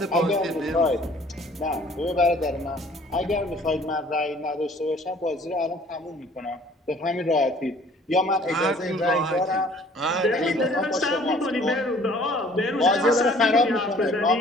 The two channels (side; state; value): both; normal; correlation 0.54